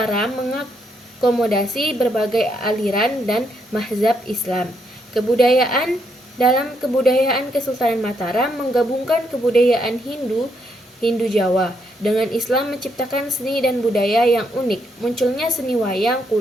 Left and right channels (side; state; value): both; normal; correlation 0.76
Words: mengakomodasi berbagai aliran dan mazhab Islam. Dalam kebudayaan Kesultanan Mataram menggabungkan kebudayaan Hindu Jawa dengan Islam, menciptakan seni dan budaya yang unik. Munculnya seni wayang